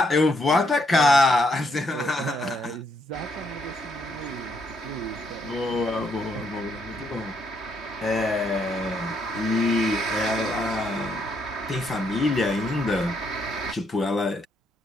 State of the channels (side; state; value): both; normal; correlation 0.74